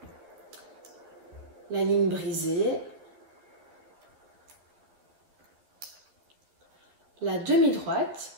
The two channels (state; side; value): late; left; 13 ms